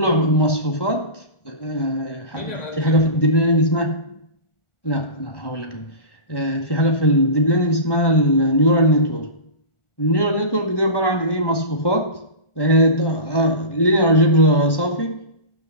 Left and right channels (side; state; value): right; late; 1.1 ms